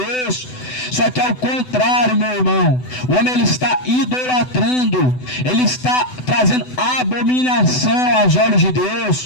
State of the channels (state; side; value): late; right; 7.9 ms